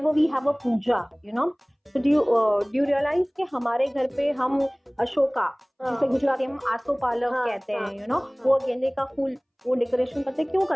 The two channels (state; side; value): identical; both; correlation 1.00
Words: we have a puja, you know. So do you realize कि हमारे घर पे हम अशोका, जिसे गुजराती में हम आसोपालव कहते हैं, you know, वो गेंदे का फूल वो डेकोरेशन करते हैं, क्यों